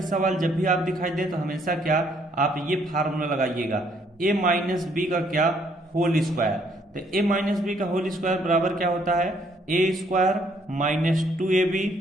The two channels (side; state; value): both; normal; correlation 0.67